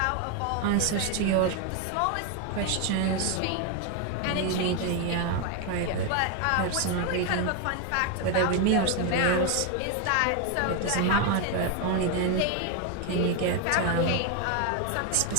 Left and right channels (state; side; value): different; both; correlation 0.01